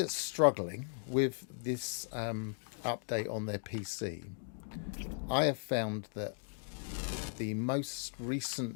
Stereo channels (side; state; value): right; silent; digital silence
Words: struggling with this update on their PC, I have found that the most